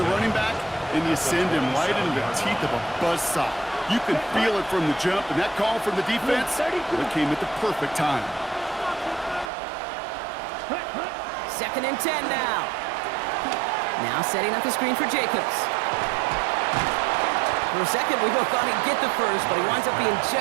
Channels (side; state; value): left; drops out; at 9.5 s